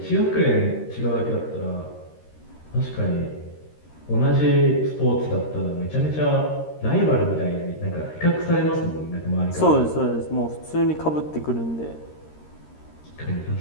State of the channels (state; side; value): late; right; 13 ms